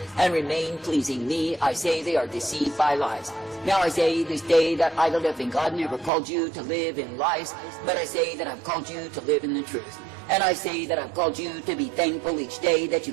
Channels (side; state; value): left; drops out; at 6.1 s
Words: and remain pleasing me, I say they are deceived by lies. Now I say this day that I, the living God, never called you to live in lies, but I say that I've called you to live in the truth. And I say that I've called you to be thankful each day that you